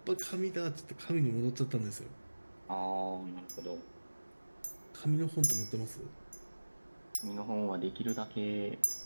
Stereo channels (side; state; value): both; inverted; correlation -1.00